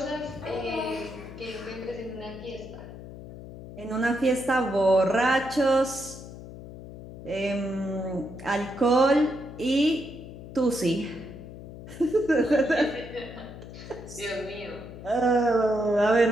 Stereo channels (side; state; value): left; noise; hum, 14 dB below the sound